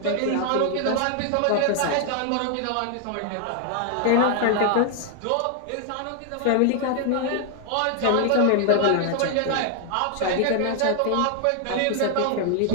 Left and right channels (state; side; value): different; both; correlation 0.00